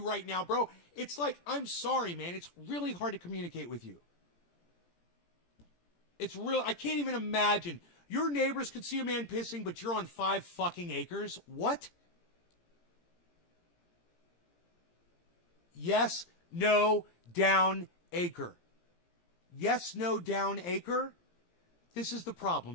right now, bro. It's like, I'm sorry, man. It's really hard to communicate with you. It's real. I can't even imagine. Your neighbors could see a man pissing, but you're on 5 fucking acres? What? Yes, no, down, acre. Yes, no, down, acre? This is the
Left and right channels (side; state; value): right; late; 17 ms